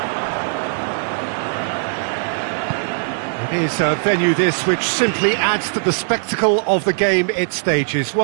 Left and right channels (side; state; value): left; silent; digital silence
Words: It is a venue this which simply adds to the spectacle of the game it stages.